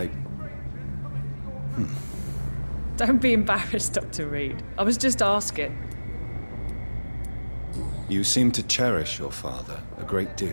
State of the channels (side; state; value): both; inverted; correlation -1.00